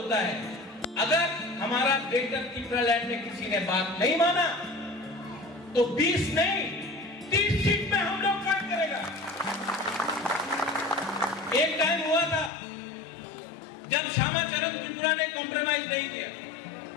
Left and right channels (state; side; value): drops out; right; at 12.5 s